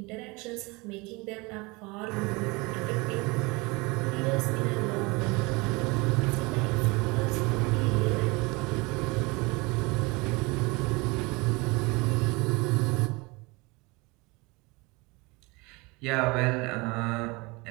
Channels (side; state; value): left; quieter; 25.8 dB